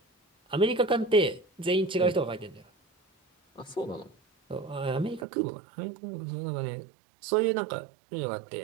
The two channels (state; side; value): drops out; left; at 5.2 s